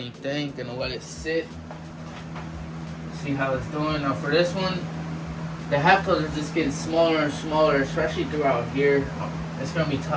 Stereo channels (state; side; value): identical; both; correlation 1.00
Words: thing, gonna let it sit. See how it's doing. Now for this one, the halftones are just getting smaller and smaller, especially throughout here. It's gonna be